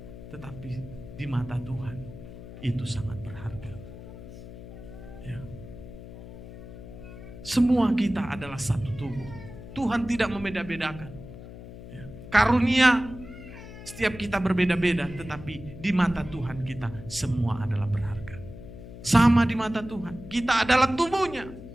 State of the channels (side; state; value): left; noise; hum, 14 dB below the sound